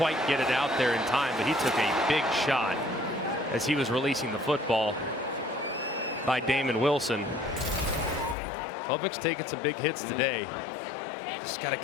get it out there in time, but he took a big shot as he was releasing the football by Damon Wilson. Klubnik's taking some big hits today. Just got to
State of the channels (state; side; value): drops out; right; at 8.3 s